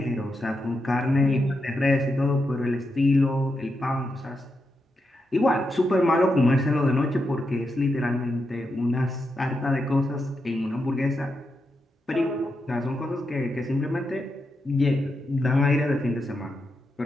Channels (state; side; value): normal; both; correlation 0.85